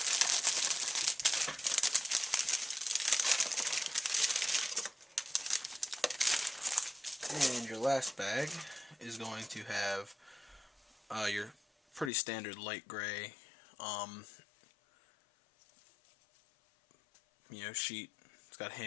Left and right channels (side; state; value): right; drops out; at 12.1 s